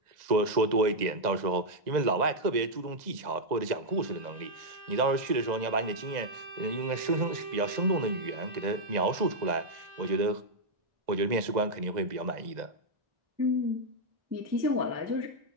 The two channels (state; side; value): late; left; 1.9 ms